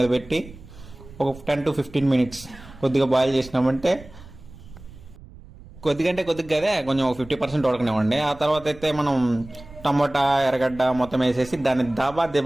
పెట్టి ఒక 10 to 15 minutes కొద్దిగా బాయిల్ చేసినామంటే, కొద్దిగంటే కొద్దిగా కదే కొంచెం 50% ఉడకనివ్వండి. ఆ తర్వాత అయితే మనం టమోటా ఎర్రగడ్డ మొత్తం వేసేసి దాన్ని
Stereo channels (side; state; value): right; noise; rumble, 19 dB below the sound